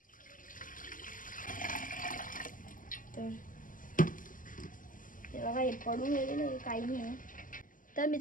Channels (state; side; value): late; right; 0.39 ms